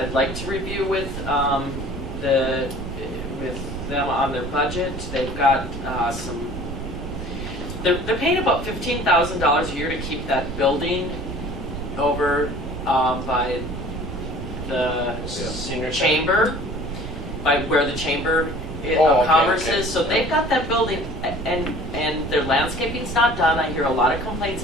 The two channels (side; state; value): right; noise; rumble, 8 dB below the sound